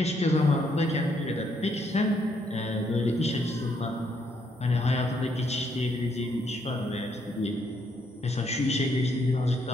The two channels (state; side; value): normal; both; correlation 0.73